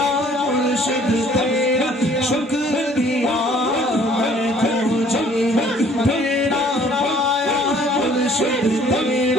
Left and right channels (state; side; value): normal; both; correlation 0.57